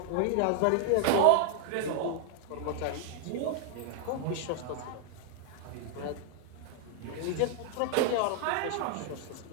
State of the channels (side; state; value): both; different; correlation 0.00